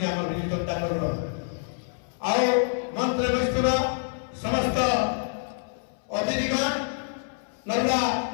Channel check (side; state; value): right; silent; 60 dB below the other